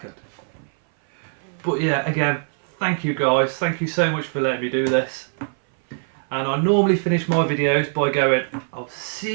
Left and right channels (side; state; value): left; silent; 59 dB below the other